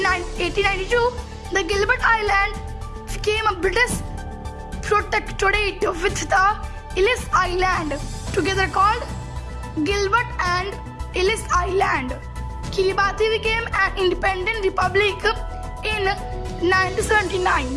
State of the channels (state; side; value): identical; both; correlation 1.00